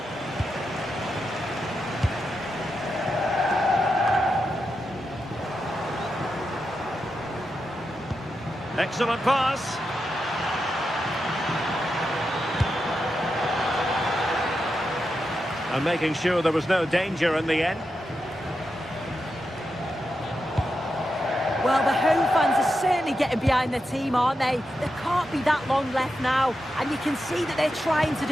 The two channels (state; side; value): normal; both; correlation 0.87